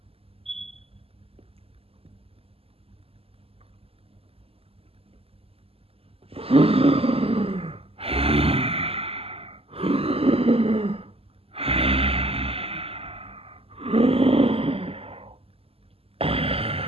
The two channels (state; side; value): late; left; 0.28 ms